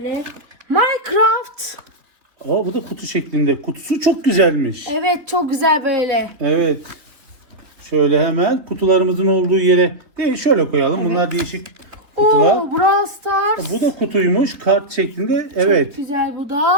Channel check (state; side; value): late; left; 3.6 ms